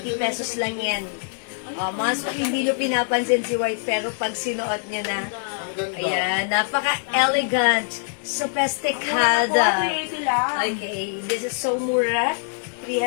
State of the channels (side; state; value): right; silent; digital silence